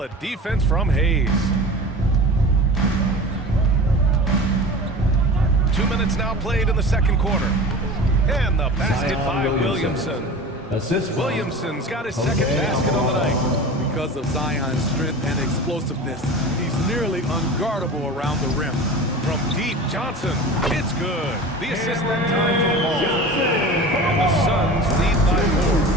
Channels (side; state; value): both; normal; correlation 0.35